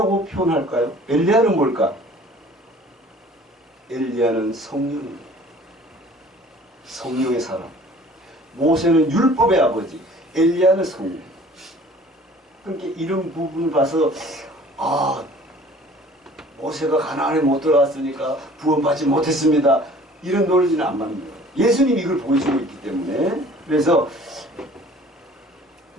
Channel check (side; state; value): both; normal; correlation 0.50